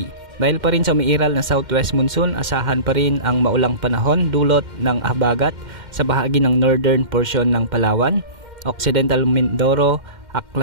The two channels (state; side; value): late; left; 2.1 ms